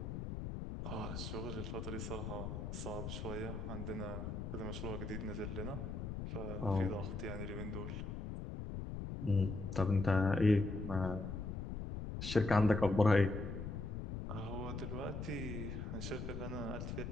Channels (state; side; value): noise; left; rumble, 5 dB below the sound